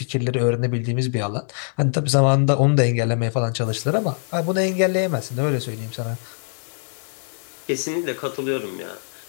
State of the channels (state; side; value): silent; right; 64 dB below the other